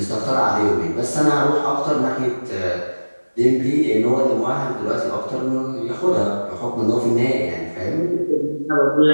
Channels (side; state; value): both; inverted; correlation -1.00